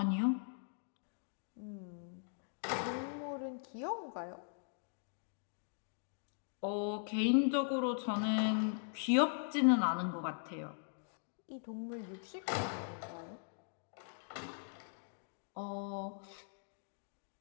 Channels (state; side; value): silent; right; digital silence